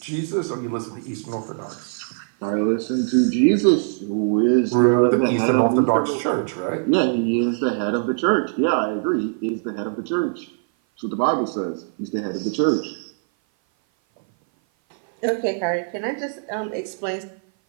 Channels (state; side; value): silent; left; 57 dB below the other